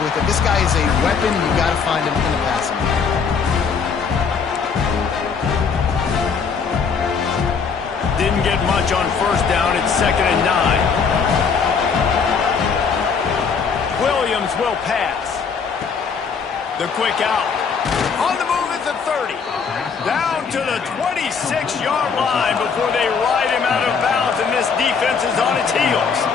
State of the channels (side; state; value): right; quieter; 5.8 dB